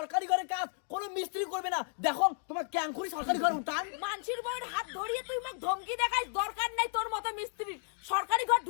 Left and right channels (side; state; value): right; silent; digital silence